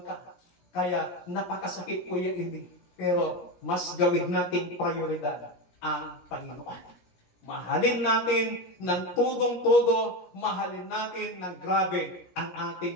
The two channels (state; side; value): late; right; 17 ms